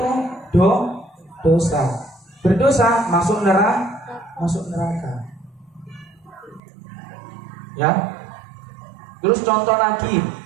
dosa. Berdosa masuk neraka. Ya. Terus contoh lagi,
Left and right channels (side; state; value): left; drops out; at 6.6 s